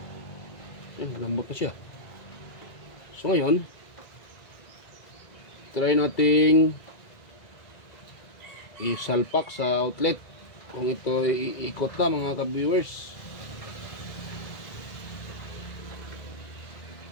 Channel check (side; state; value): right; late; 1.9 ms